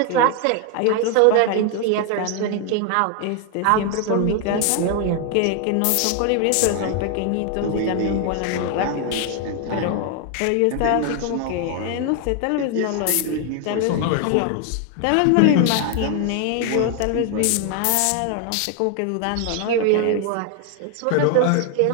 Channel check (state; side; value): different; both; correlation 0.00